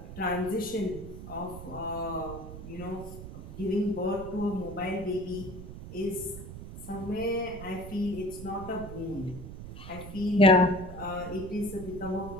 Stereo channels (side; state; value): right; noise; rumble, 11 dB below the sound